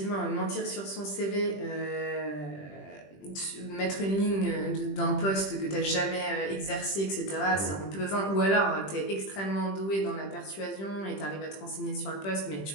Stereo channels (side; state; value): right; late; 20 ms